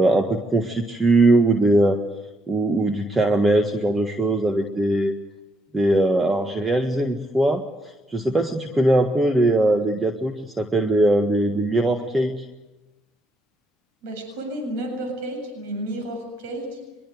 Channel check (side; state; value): both; normal; correlation 0.77